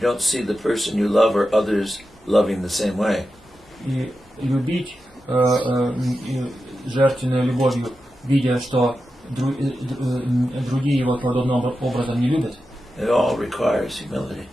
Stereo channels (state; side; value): normal; both; correlation 0.90